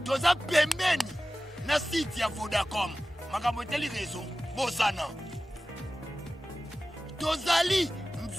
Toza pembeni na site ya Vodacom. Makambo teli réseau bosana. Tozali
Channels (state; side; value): normal; both; correlation 0.96